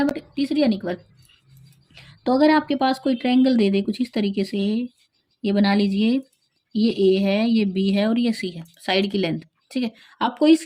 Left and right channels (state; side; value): identical; both; correlation 1.00